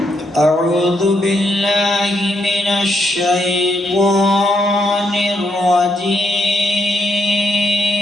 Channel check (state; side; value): normal; both; correlation 0.77